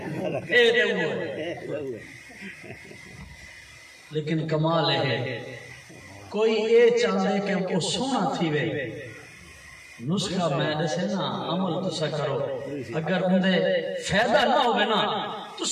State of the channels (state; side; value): identical; both; correlation 1.00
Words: اے دے ہوئے لیکن کمال ہے کوئی اے چاہتے کہ وہ سونا تھی وے نسخہ میں دسے نا عمل تسا کرو اگر اندے فیدہ نہ ہوئے نا